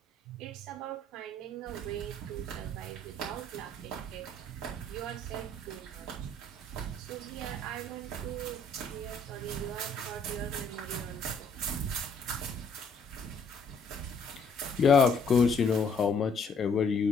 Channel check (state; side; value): quieter; right; 3.1 dB